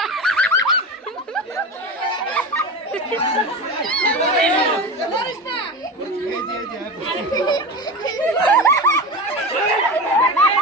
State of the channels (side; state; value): both; normal; correlation 0.26